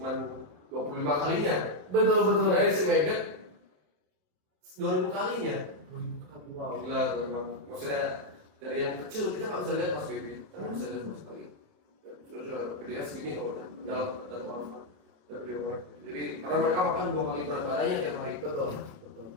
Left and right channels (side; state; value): left; late; 27 ms